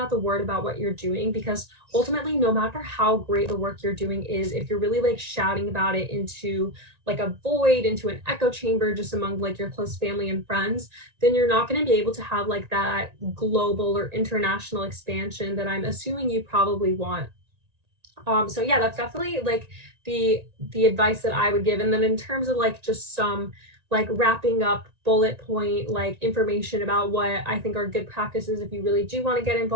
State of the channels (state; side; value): late; left; 1.9 ms